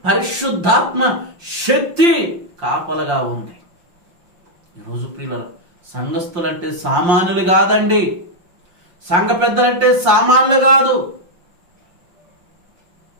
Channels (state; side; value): late; left; 5.7 ms